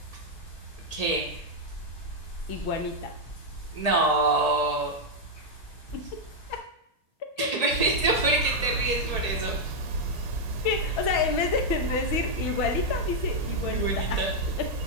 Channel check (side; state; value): right; late; 1.8 ms